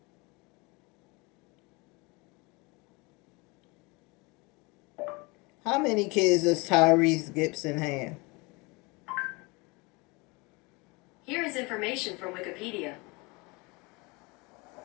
How many kids does Tyrese Gibson have? Here is information from Wikipedia.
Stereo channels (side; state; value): right; quieter; 26.6 dB